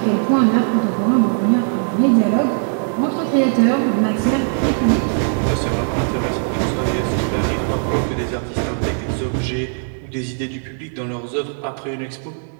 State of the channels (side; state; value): left; silent; digital silence